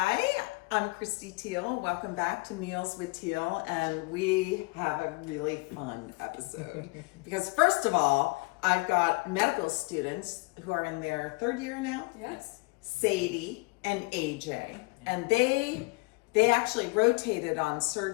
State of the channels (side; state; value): right; quieter; 27.3 dB